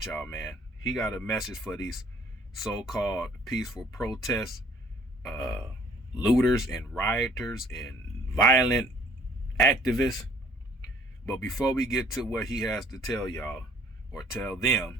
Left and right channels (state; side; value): normal; both; correlation 0.57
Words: y'all, man. He got a message for these so-called peaceful protests, looters and rioters and violent activists. But before we get to what he has to tell y'all, or tell them,